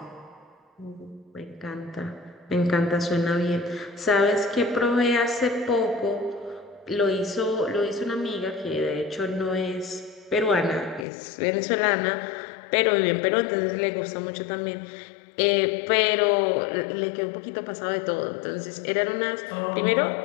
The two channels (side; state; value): right; drops out; at 11.1 s